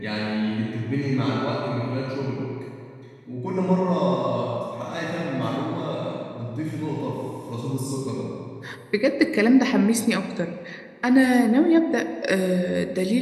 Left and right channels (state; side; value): identical; both; correlation 1.00